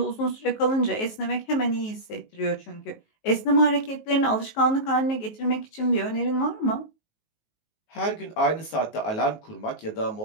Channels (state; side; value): late; right; 19 ms